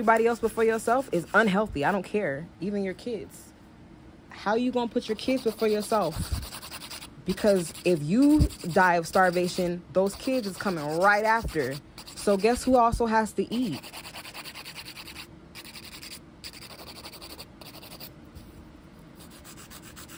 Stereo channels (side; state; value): both; identical; correlation 1.00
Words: else before yourself is unhealthy. I don't care. Even your kids. How you gonna put your kids before yourself? Because if you die of starvation, those kids is coming right after. So guess who also has to eat?